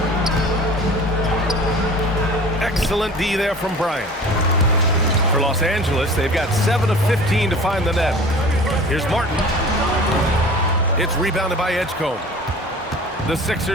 Excellent D there from Bryant. For Los Angeles, they've got 7 of 15 to find the net. Here's Martin. It's rebounded by Edgecombe. The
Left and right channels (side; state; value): both; normal; correlation 0.42